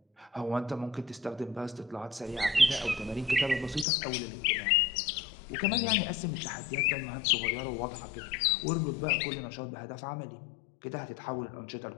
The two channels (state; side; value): drops out; right; at 3.9 s